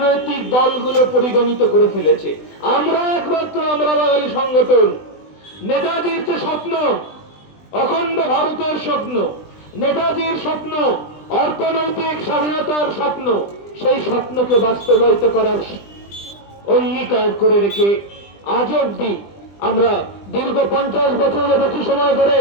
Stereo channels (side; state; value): right; late; 20 ms